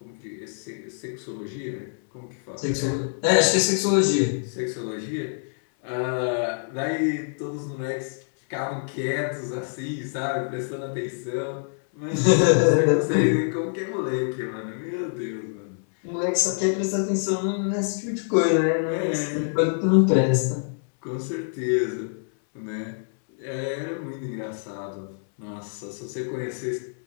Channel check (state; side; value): silent; right; 61 dB below the other